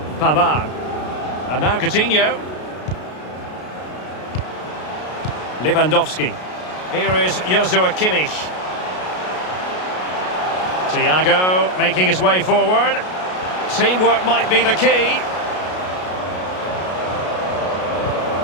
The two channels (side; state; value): right; late; 33 ms